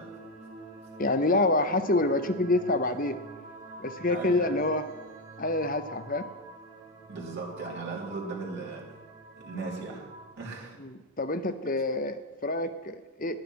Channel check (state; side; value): normal; both; correlation 0.08